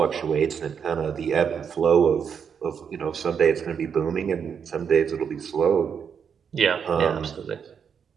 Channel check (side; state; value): left; quieter; 7.1 dB